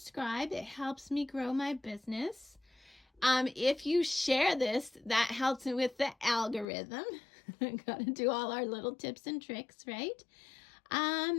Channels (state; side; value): drops out; right; at 6.7 s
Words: It helps me grow my business. If you share this, that helps me with the algorithm. Got to do all our little tips and tricks, right?